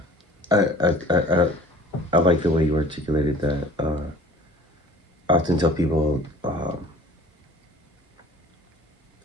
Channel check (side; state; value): both; normal; correlation 0.49